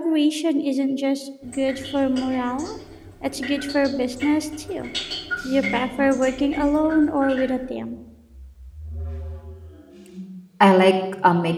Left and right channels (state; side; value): identical; both; correlation 1.00